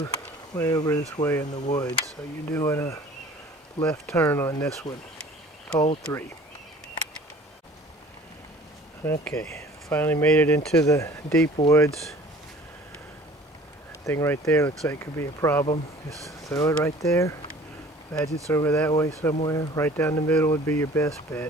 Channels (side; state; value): both; normal; correlation 0.49